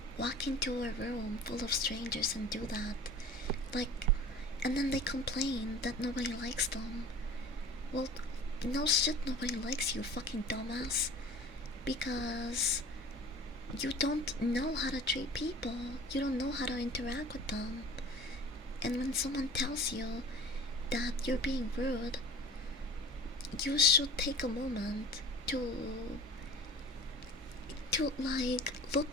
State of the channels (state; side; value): normal; both; correlation 0.42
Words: walk into a room full of strangers and do that. Like, and then they complain that nobody likes them. Well, no shit, nobody likes you, fucking dumbass. Because you don't know how to treat people. You don't know how to interact with them. And when someone tells you that you're being rude, you should take a moment to like